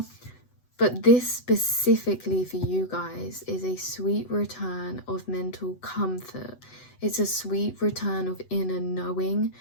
But this specifically for you guys is a sweet return of mental comfort. It's a sweet return of inner knowing,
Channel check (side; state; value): right; late; 8.0 ms